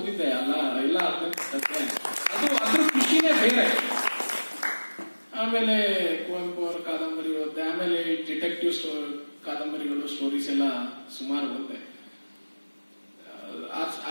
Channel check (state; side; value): inverted; both; correlation -1.00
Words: ಎಲ್ಲ ಅದು ಅದ್ರ ಖುಷಿನೇ ಬೇರೆ. ಆಮೇಲೆ ಕುವೆಂಪು ಅವರ ಕಾದಂಬರಿ ಓದಿದೆ. ಆಮೇಲೆ ಡಿಟೆಕ್ಟಿವ್ ಕಾದಂಬರಿಗಳು, ಸ್ಟೋರೀಸ್ ಎಲ್ಲ ಸುಮಾರು ಓದಿದೆ.